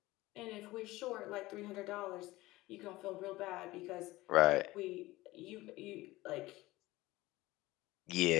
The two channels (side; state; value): right; quieter; 18.8 dB